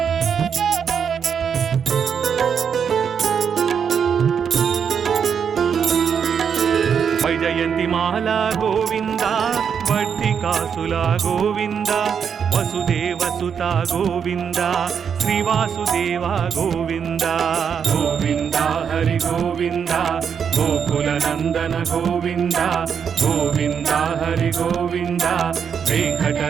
ವೈಜಯಂತಿ ಮಾಲಾ ಗೋವಿಂದ ವರ್ತಿಕಾಸುಲ ಗೋವಿಂದ ವಸುದೇವ ಸುತ ಗೋವಿಂದ ಶ್ರೀವಾಸುದೇವ ಗೋವಿಂದ ಗೋವಿಂದ ಹರಿ ಗೋವಿಂದ ಗೋಕುಲ ನಂದನ ಗೋವಿಂದ ಗೋವಿಂದ ಹರಿ ಗೋವಿಂದ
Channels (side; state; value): left; quieter; 7.2 dB